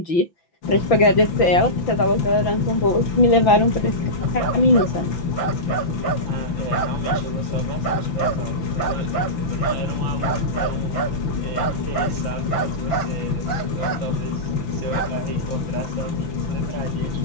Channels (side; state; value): right; late; 5.9 ms